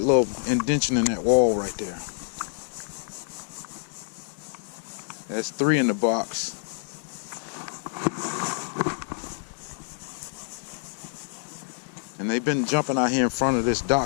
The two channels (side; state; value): right; silent; digital silence